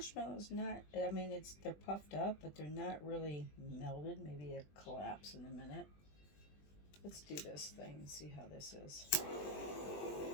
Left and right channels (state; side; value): late; right; 20 ms